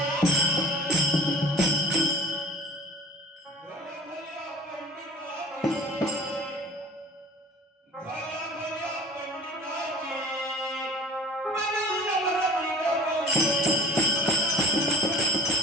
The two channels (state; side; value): normal; both; correlation 0.43